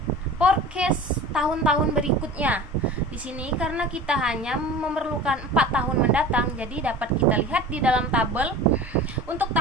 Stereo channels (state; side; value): normal; both; correlation 0.37